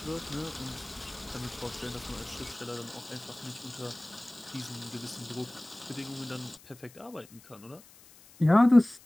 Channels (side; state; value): left; noise; hiss, 23 dB below the sound